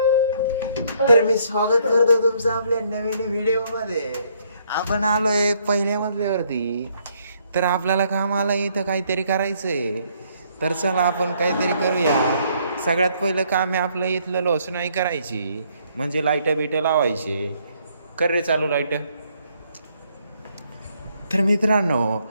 तर मी स्वागत करतो तुमचं आपल्या नवीन व्हिडिओ मध्ये. आपण आलोय पहिल्या मजल्यावरती. तर आपल्याला कामाला इथं काहीतरी करायचंय. तर चला आपण काहीतरी करूया. सगळ्यात पहिलं काम आहे आपलं इथलं लोसनाई करायची, म्हणजे लाईट बिट लावायची. कर रे चालू लाईट. तर मित्रांनो,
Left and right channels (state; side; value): inverted; both; correlation -0.68